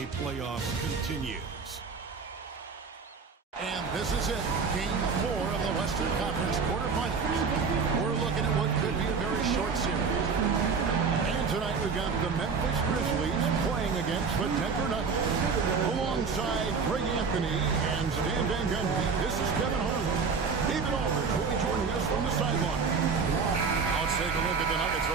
playoffs continues. And this is it, Game 4 of the Western Conference quarterfinals. We're looking at what could be a very short series. And tonight we've got the Memphis Grizzlies playing against the Denver Nuggets. Alongside Greg Anthony and Stan Van Gundy, this is Kevin Harlan. David Aldridge will be joining us from the sideline. Let's take a look at the Nuggets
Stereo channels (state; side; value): quieter; left; 5.3 dB